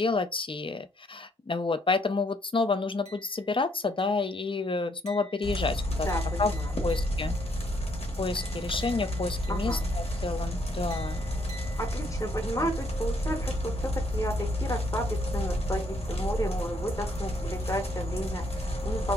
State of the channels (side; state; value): both; normal; correlation 0.70